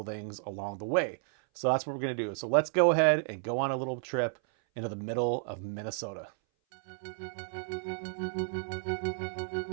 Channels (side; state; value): left; silent; 56 dB below the other